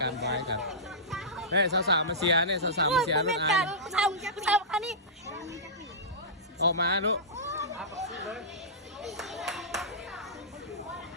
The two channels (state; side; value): normal; both; correlation -0.17